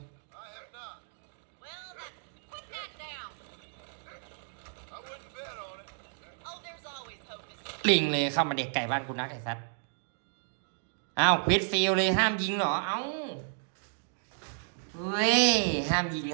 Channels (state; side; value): silent; left; digital silence